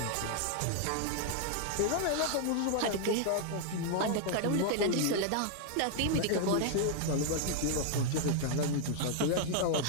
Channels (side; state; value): both; different; correlation 0.00